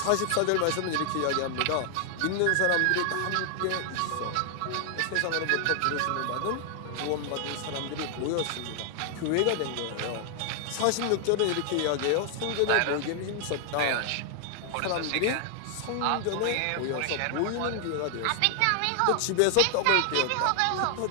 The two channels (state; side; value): different; both; correlation 0.00